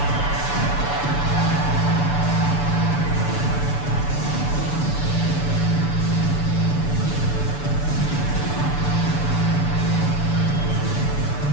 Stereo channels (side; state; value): right; late; 6.9 ms